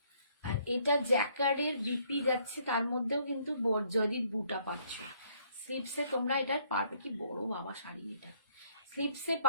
আর এটা জ্যাকার্ডের বিপি যাচ্ছে, তার মধ্যেও কিন্তু জরির বুটা পাচ্ছ। স্লিপসে তোমরা এটার পার, কি বড় বাবা শাড়ি, এটা স্লিপসে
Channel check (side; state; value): both; inverted; correlation -0.65